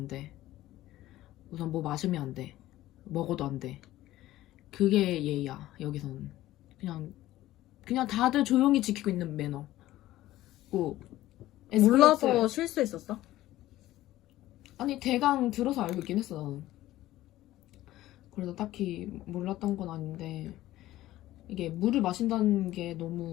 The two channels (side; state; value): right; quieter; 15.4 dB